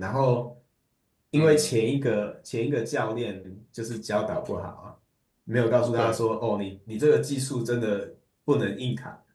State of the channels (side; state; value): both; identical; correlation 1.00